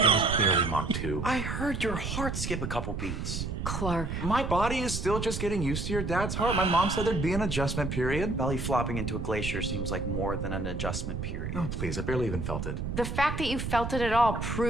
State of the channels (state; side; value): noise; right; rumble, 4 dB below the sound